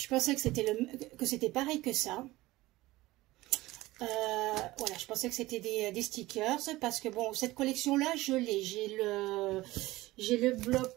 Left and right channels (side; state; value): left; quieter; 18.5 dB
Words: pensais que c'était pareil que ça. Voilà, je pensais que c'était des stickers parce que bon, cette collection-là, je l'ai. J'ai le